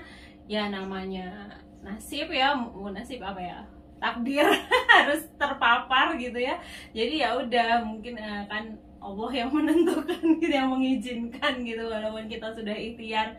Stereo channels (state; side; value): identical; both; correlation 1.00